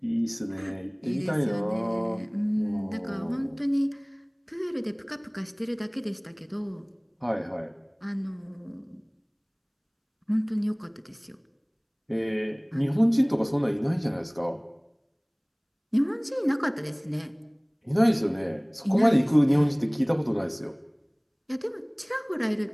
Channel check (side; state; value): both; identical; correlation 1.00